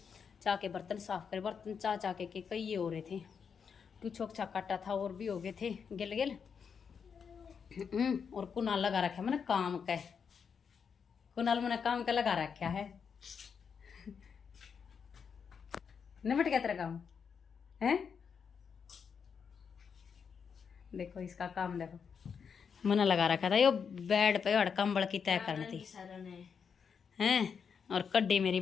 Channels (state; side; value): quieter; right; 6.5 dB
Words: चाह के बर्तन साफ करे, बर्तन चाह के कई ये हो रहे थे। कुछ छोक काटा था और भी हो गए थे गिल गिल। और कुनाल लगा रखा मैंने काम का। कुनाल मैंने काम का लगा रखा है। निमट गया तेरा काम है। देखो इसका काम देखो, मैंने लगा रखा था यो बेड पे और कंबल की तय करनी थी हैं। और कड्डी मेरी